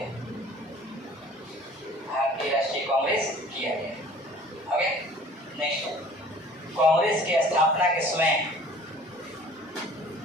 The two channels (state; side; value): normal; both; correlation 0.49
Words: भारतीय राष्ट्रीय कांग्रेस किया गया। ओके, नेक्स्ट, कांग्रेस की स्थापना के समय